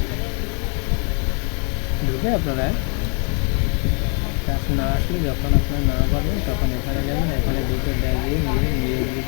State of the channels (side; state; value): right; quieter; 38.9 dB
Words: ঢুকে আপনারা কাজ না আসলে, যখন আপনারা না পারবেন তখন এখানে যাবেন। এখানে ঢুকে দেখবেন নিয়োগ